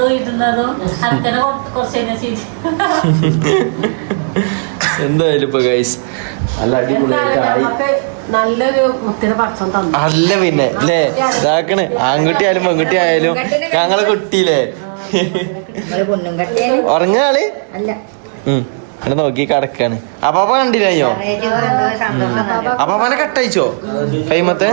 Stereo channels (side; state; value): left; silent; digital silence